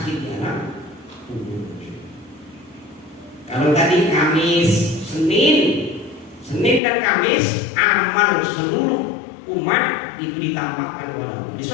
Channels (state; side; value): drops out; right; at 6.8 s